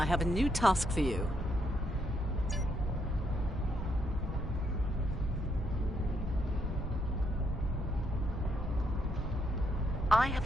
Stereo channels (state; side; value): normal; both; correlation 0.76